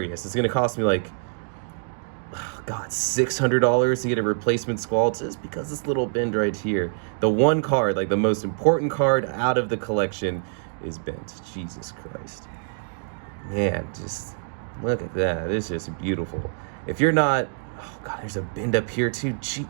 It's gonna cost me like, oh God, $600 to get a replacement Squall just because this little bend right here. The one card, like the most important card out of the collection, is bent. Jesus Christ. Man, just look at that. It's just beautiful. If you're not, oh God, there's a bend up here too. Gee,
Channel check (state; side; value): silent; left; digital silence